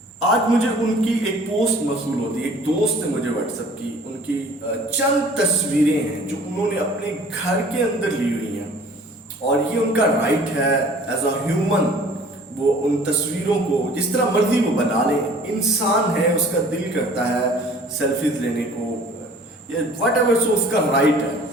आज मुझे उनकी एक पोस्ट मौसूल होती है, एक दोस्त ने मुझे व्हाट्सएप की, उनकी चंद तस्वीरें हैं जो उन्होंने अपने घर के अंदर ली हुई हैं और ये उनका राइट है एज अ ह्यूमन। वो उन तस्वीरों को जिस तरह मर्जी वो बना लें, इंसान है, उसका दिल करता है सेल्फीज लेने को या वट एवर, सो उसका राइट है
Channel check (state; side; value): normal; both; correlation 0.50